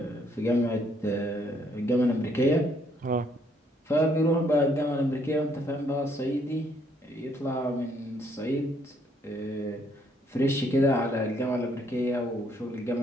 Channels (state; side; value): normal; both; correlation 0.69